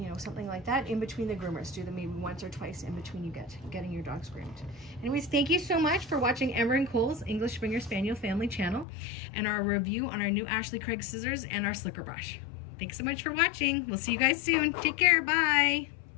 know, something like that. In between the groomers, do them maybe once or twice in between you getting your dogs groomed. Anyways, thank you so much for watching Ember and Cole's English Springer Spaniel family channel and our review on our new Ashley Craig scissors and our slicker brush. Thanks so much for watching. We'll see you guys soon. Take care. Bye.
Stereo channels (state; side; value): drops out; right; at 8.8 s